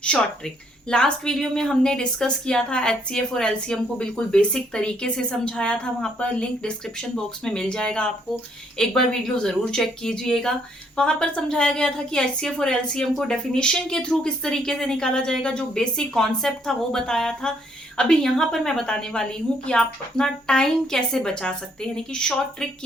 शॉर्ट ट्रिक। लास्ट वीडियो में हमने डिस्कस किया था HCF और LCM को, बिल्कुल बेसिक तरीके से समझाया था। वहां पर लिंक डिस्क्रिप्शन बॉक्स में मिल जाएगा, आपको एक बार वीडियो जरूर चेक कीजिएगा। वहां पर समझाया गया था कि HCF और LCM को डेफिनेशन के थ्रू किस तरीके से निकाला जाएगा, जो बेसिक कॉन्सेप्ट था वो बताया था। अभी यहाँ पर मैं बताने वाली हूँ कि आप अपना टाइम कैसे बचा सकते हैं, यानी कि शॉर्ट ट्रिक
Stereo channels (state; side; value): normal; both; correlation 0.69